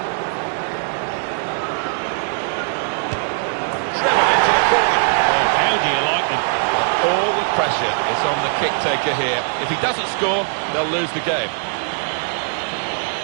Driven into the corner. Oh, how do you like them? Well, all the pressure is on the kick-taker here. If he doesn't score, they'll lose the game.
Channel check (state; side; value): silent; left; digital silence